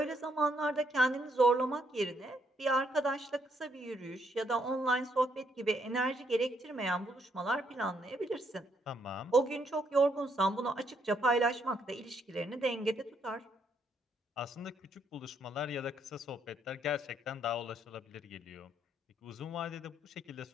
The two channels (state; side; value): normal; both; correlation 0.73